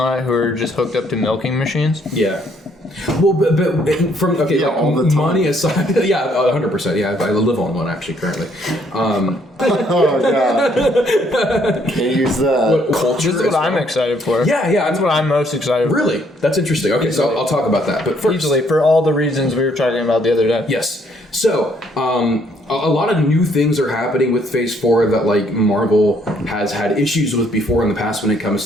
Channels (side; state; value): both; normal; correlation 0.67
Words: it who are just hooked up to milking machines? Yeah. Well, but from all the time. money aside, 100%. Yeah, I live on one actually currently. Oh god. Can't use that. Culture. This is what I'm excited for. Yeah. That's what I'm most excited for. Really, that's interesting. Okay, so I'll talk about that. But first, Easily, for all the reasons we were talking about the other day. yes. So, a lot of new things are happening with Phase 4 that like Marvel has had issues with before in the past when it